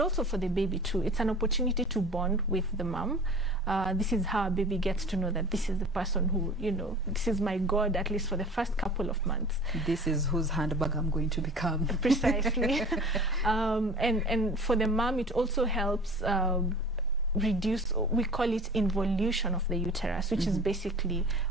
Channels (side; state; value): both; normal; correlation 0.42